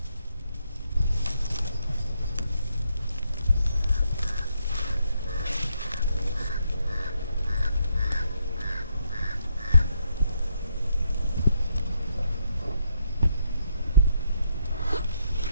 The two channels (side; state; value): both; inverted; correlation -0.75